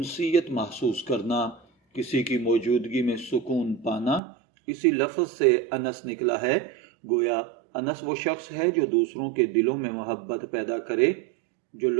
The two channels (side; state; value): left; drops out; at 4.2 s